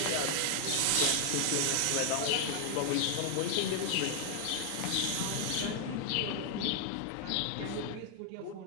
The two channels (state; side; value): different; both; correlation 0.00